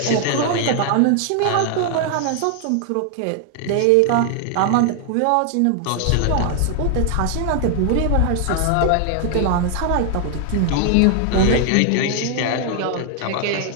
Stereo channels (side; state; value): both; different; correlation 0.00